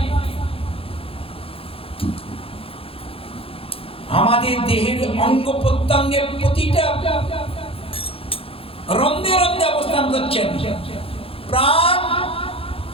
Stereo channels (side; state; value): right; late; 0.27 ms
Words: আমাদের দেহের অঙ্গ প্রত্যঙ্গের প্রতিটা রন্ধে রন্ধে অবস্থান করছেন। প্রাণ